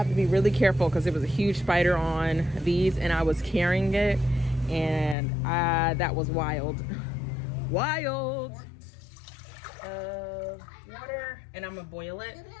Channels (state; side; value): drops out; right; at 5.2 s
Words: to be really careful because there was a huge spider on these and I was carrying it, and that was wild. Wild. Water, and I'm gonna boil it.